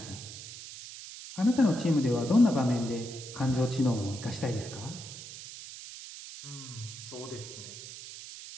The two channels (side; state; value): right; noise; hiss, 12 dB below the sound